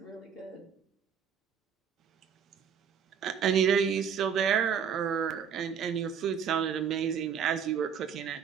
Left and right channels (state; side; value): quieter; left; 7.4 dB